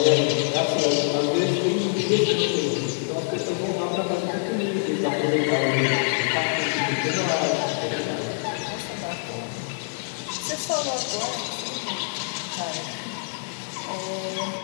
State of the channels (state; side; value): silent; right; digital silence